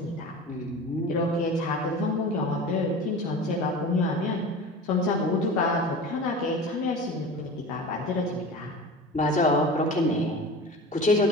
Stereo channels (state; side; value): normal; both; correlation 0.35